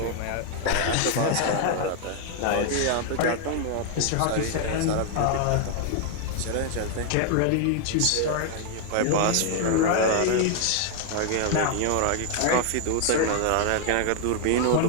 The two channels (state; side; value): different; both; correlation 0.00